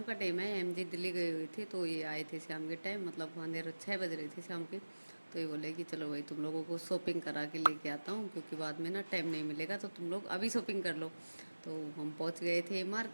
का टाइम है, एमजी दिल्ली गए हुए थे तो ये आए थे शाम के टाइम, मतलब अंधेरा 6 बज रहे थे शाम के। तो ये बोले कि चलो भाई तुम लोगों को शॉपिंग करा के लेके आता हूँ, क्योंकि बाद में ना टाइम नहीं मिलेगा, तो तुम लोग अभी शॉपिंग कर लो। तो हम पहुँच गए थे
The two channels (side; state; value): both; inverted; correlation -1.00